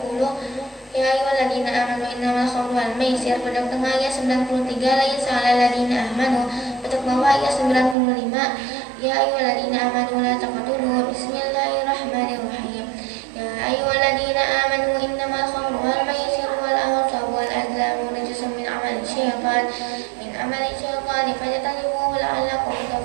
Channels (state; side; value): drops out; left; at 8.0 s